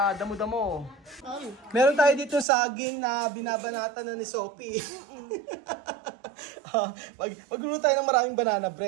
damo-damo. Meron tayo dito saging na binabanatan na ni Sophie. Magluluto tayo ng maraming banana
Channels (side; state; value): left; drops out; at 2.5 s